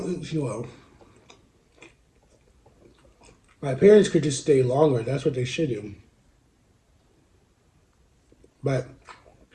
think she will. My parents could just stay longer. That's what they should do. But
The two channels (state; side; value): identical; both; correlation 1.00